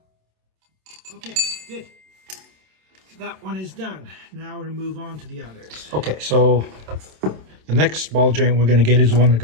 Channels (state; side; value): late; left; 27 ms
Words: Okay, good. That one is done. Now we're going to move on to the others. Okay, so the next ball joint we're going to get is the one that